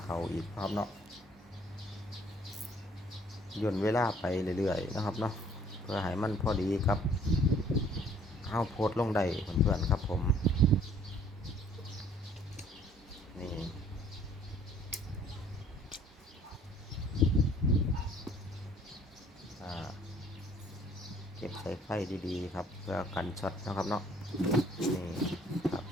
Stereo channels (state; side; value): normal; both; correlation 0.58